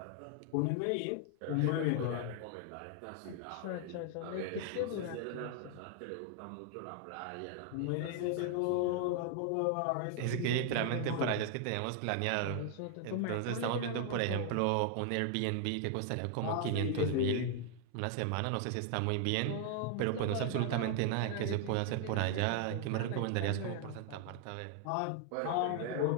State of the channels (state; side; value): different; both; correlation 0.00